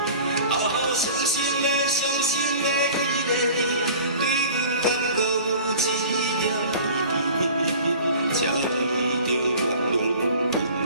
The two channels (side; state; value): both; inverted; correlation -0.43